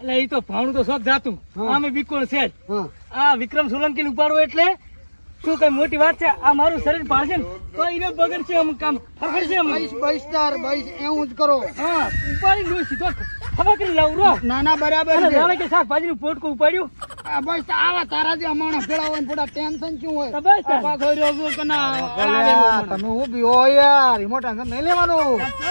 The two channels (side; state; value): both; inverted; correlation -1.00